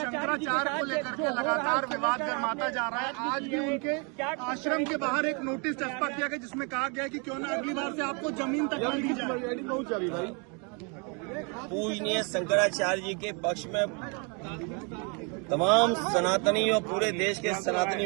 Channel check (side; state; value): left; quieter; 34.6 dB